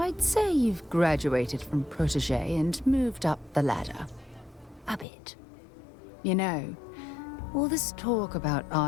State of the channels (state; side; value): drops out; right; at 5.1 s